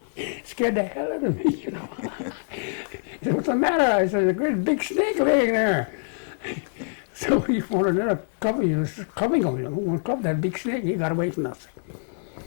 Scared the hell out of me, you know. He said, what's the matter? I said, there's a great big snake laying there. So he found another club, he was clubbing him, you know. One club, that big snake, he got away from us.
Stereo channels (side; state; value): right; silent; digital silence